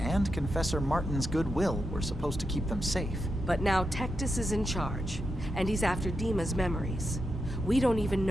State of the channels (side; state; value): both; normal; correlation 0.86